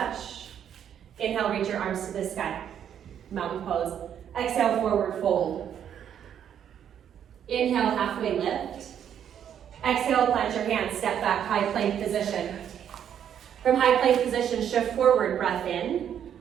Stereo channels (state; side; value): quieter; left; 9.2 dB